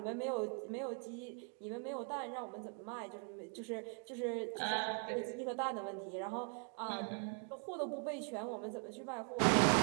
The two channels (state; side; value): quieter; left; 39.1 dB